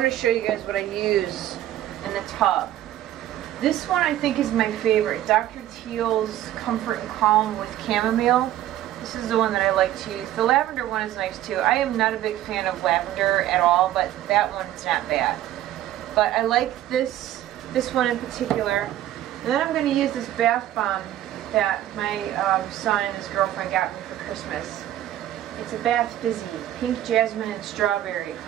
to show you guys what I use in the tub. This one I think is my favorite, Dr. Teal's Comfort and Calm with Chamomile. This is the one that I like to use. The lavender one is nice too. I am not a big fan of lavender at all, but that one's not bad. But I like this one in particular. And then I'm going to use this bath bomb that my son and his girlfriend got me for Christmas. It's a Bath Fizzy, pink jasmine and strawberry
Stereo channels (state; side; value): quieter; left; 13.0 dB